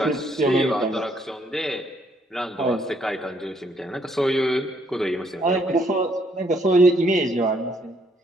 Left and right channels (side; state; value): both; normal; correlation 0.69